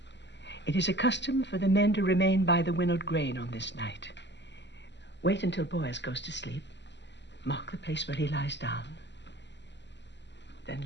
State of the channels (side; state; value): right; late; 0.51 ms